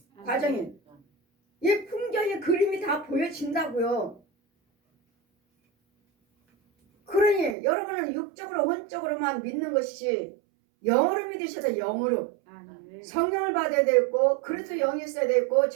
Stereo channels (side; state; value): left; drops out; at 7.6 s